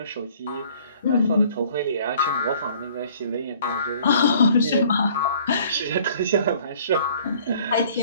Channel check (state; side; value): inverted; both; correlation -0.55